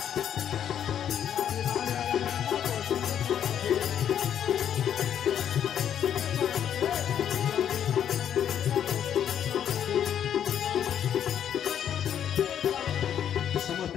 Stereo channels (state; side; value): quieter; right; 9.5 dB